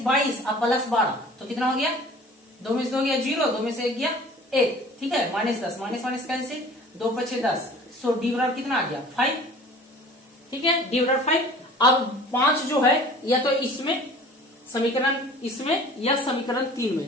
22 अब प्लस 12, तो कितना हो गया, 2 में से 2 गया 0, 2 में से 1 गया 1, ठीक है, माइनस 10 माइनस माइनस कैंसिल, 2 पछे 10, सो डी बराबर कितना आ गया 5, ठीक है, डी बराबर 5। अब 5 जो है या तो इसमें समीकरण, इसमें या समीकरण 3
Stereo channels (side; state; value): both; normal; correlation 0.46